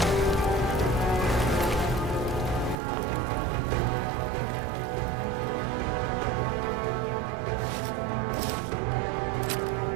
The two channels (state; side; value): drops out; left; at 2.8 s